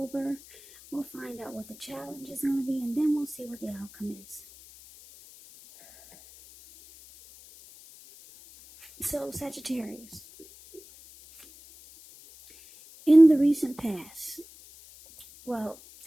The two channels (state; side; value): noise; left; hiss, 21 dB below the sound